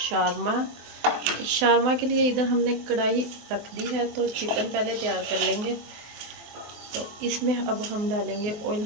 शारमा के लिए इधर हमने कढ़ाई रख दी है, तो चिकन पहले तैयार कर लेंगे। तो इसमें अब हम डालेंगे, ऑयल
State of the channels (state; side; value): late; left; 24 ms